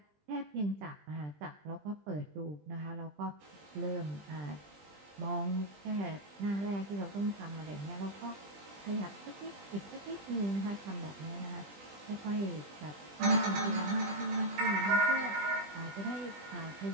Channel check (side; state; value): left; late; 20 ms